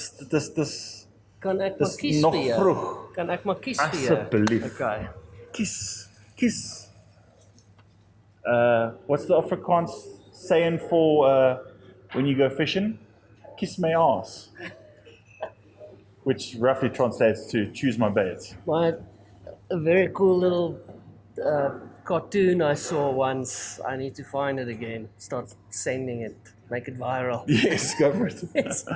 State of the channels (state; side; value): identical; both; correlation 1.00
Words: Kan ek maar dis kies nog vir jou? vroeg. Kan ek maar kies vir jou? Asseblief. Okay. Kies. What's the Afrikaans saying for when you go fishing? Kiss my ass. Which roughly translates to choose my bait. A very cool little cartoon I saw once. I need to find it again. Start sending it. Make it viral. Yes, go for it.